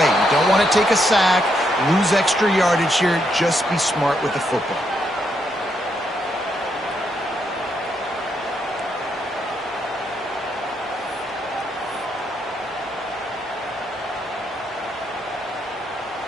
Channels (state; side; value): normal; both; correlation 0.78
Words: You don't want to take a sack, lose extra yardage here. Just be smart with the football.